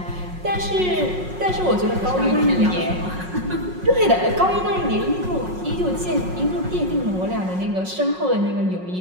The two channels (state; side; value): late; left; 5.5 ms